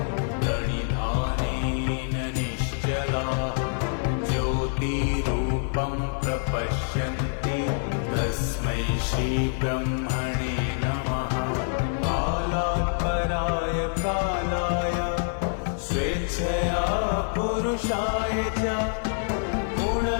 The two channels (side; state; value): right; silent; 61 dB below the other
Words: प्रणिधानेन निश्चलाः ज्योतिरूपं प्रपश्यन्ति तस्मै श्रीब्रह्मणे नमः। कालात् पराय कालाय स्वेच्छया पुरुषाय च